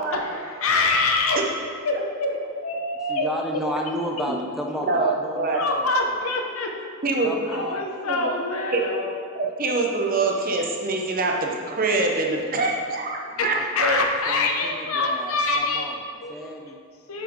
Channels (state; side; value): normal; both; correlation -0.02